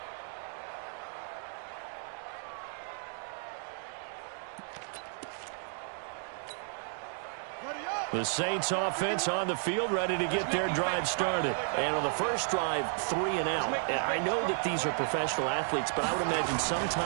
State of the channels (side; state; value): left; silent; 56 dB below the other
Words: The Saints offense on the field, ready to get their drive started. And on the first drive, 3 and out. I know that these are professional athletes, but I would imagine